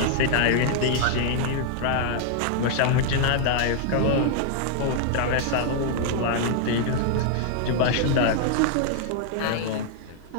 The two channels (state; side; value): different; both; correlation -0.01